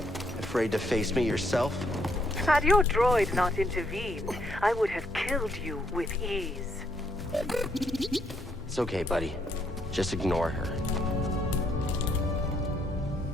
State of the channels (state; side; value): normal; both; correlation 0.73